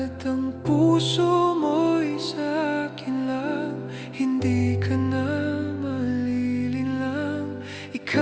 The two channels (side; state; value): both; identical; correlation 1.00